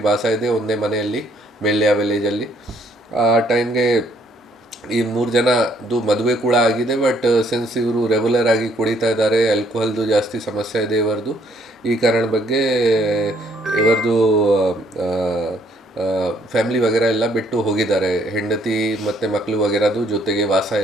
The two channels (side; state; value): both; normal; correlation 0.66